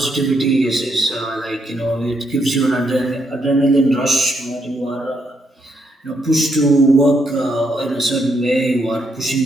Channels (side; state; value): both; normal; correlation 0.77